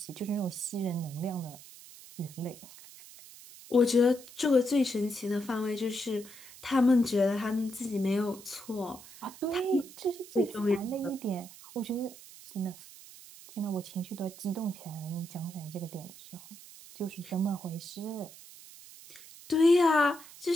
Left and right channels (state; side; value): noise; right; hiss, 18 dB below the sound